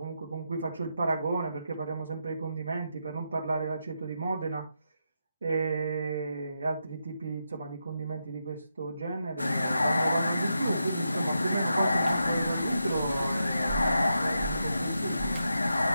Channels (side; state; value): both; inverted; correlation -0.85